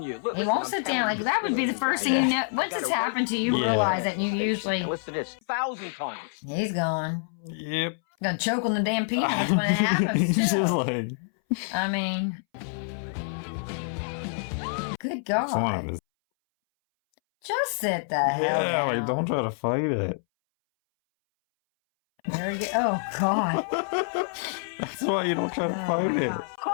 you. Look, He won't sit down. Like that would be the first thing you know. Once it's happened to you, you realize it, and you usually. Listen to this 1,000 times. He's gone. Yep. Gonna choke on the damn peanuts when it happens. He's too. just like. I mean, good It's one of God. his. Just sit the hell Yeah, down. like don't try to fight it. There you go. Oh God. That's why you don't try to fight it.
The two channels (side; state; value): right; silent; 60 dB below the other